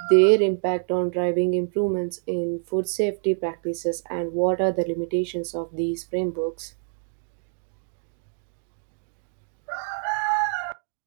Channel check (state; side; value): silent; left; digital silence